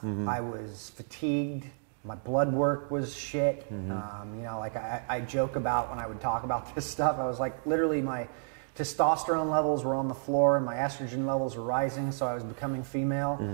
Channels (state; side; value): silent; left; digital silence